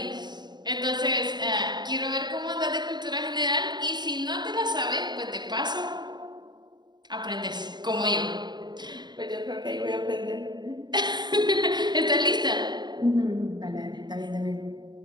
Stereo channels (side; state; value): left; late; 0.21 ms